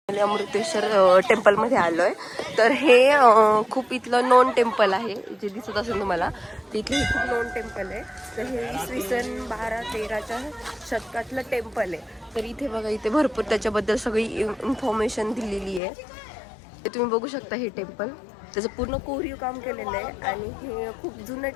अमृतेश्वर टेम्पलमध्ये आलो आहे. तर हे खूप इथलं नोन टेम्पल आहे, जे दिसत असेल तुम्हाला. तिथले खूप नोन टेम्पल आहे. तर हे इसवी सन 12-13च्या शतकातलं टेम्पल आहे. तर इथे बघा, इथे भरपूर त्याच्याबद्दल सगळी इन्फॉर्मेशन दिलेली आहे. ते तुम्ही बघू शकता. हे टेम्पल त्याचं पूर्ण कोरीव काम केलेलं आहे आणि हे खूप जुनं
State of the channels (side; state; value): right; drops out; at 15.8 s